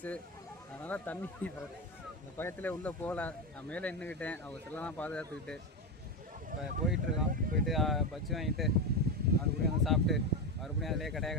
அதனால் தண்ணி இந்த பக்கத்தில் உள்ளே போகல. நான் மேலே நின்றுக்கிட்டேன். அவங்க செல்லாம் பாதுகாத்துக்கிட்டு இப்போ போயிட்டுருக்கோம். போயிட்டு பஜ்ஜி வாங்கிட்டு மறுபடியும் வந்து சாப்பிட்டு மறுபடியும் அதிலே கடையாக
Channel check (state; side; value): normal; both; correlation 0.14